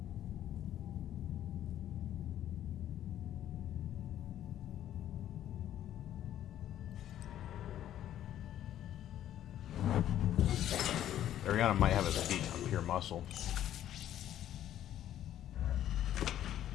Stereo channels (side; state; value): right; quieter; 11.7 dB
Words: Ariana might have a speed on pure muscle.